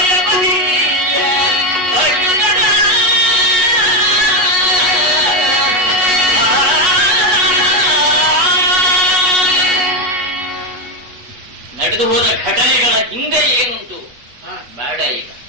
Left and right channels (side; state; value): left; late; 8.2 ms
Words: ನಡೆದು ಹೋದ ಘಟನೆಗಳ ಹಿಂದೆ ಏನುಂಟು ಬೇಡ, ಈಗ